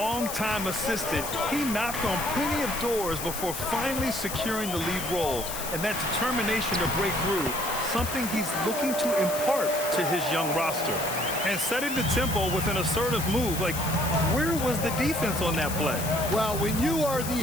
assistant. He knocked on plenty of doors before finally securing the lead role. And that determination to break through, something he's looking to impart to his young roster. And setting the tempo with an assertive move. Like, where was the defense on that play? Well, when you are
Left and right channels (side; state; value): left; noise; hiss, 7 dB below the sound